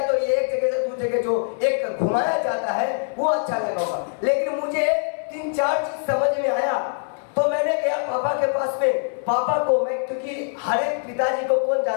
तो ये एक जगह से दूसरी जगह जो एक घुमाया जाता है वो अच्छा लगा होगा। लेकिन मुझे 3-4 चीज समझ में आया, तो मैंने गया पापा के पास में। पापा को मैं, क्योंकि हर एक पिताजी को कौन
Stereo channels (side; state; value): right; silent; digital silence